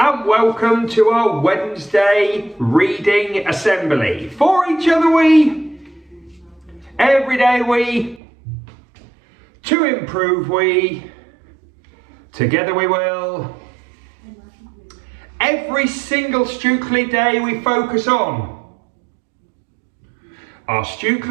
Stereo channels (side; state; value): left; drops out; at 8.2 s